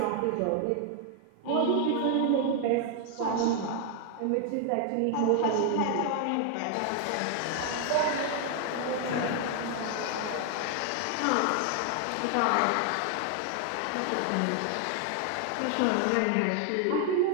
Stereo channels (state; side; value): different; both; correlation 0.00